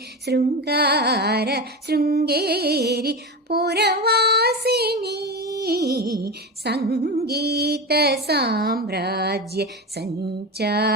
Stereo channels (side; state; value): both; normal; correlation 0.22